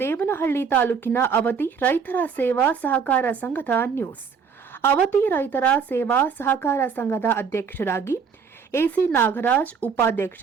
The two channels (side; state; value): left; quieter; 6.1 dB